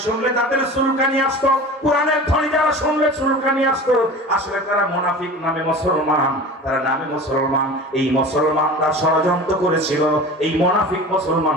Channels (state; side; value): normal; both; correlation 0.36